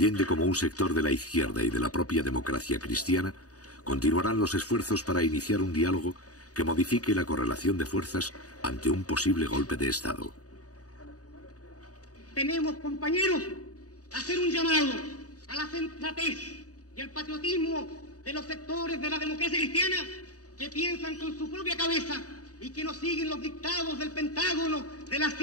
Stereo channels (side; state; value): right; late; 0.67 ms